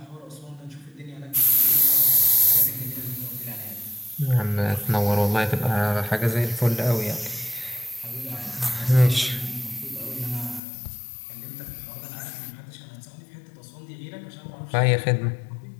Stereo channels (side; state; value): right; drops out; at 10.6 s